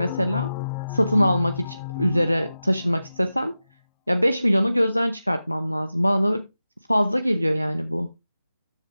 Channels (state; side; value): inverted; both; correlation -0.93